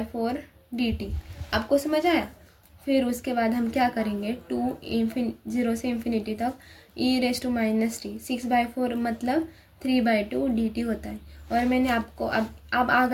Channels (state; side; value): identical; both; correlation 1.00